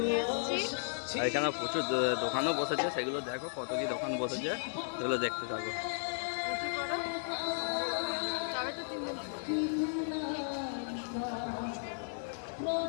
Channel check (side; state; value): right; silent; 55 dB below the other